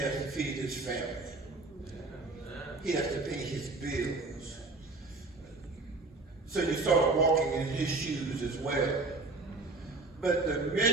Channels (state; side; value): quieter; left; 3.5 dB